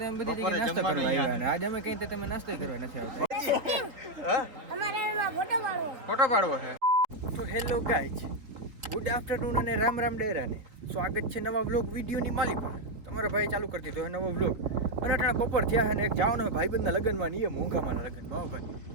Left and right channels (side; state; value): left; late; 3.8 ms